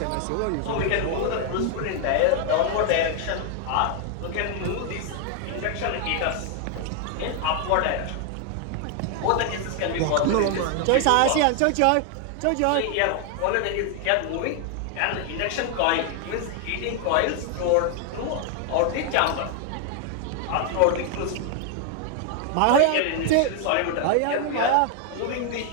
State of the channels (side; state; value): both; different; correlation 0.00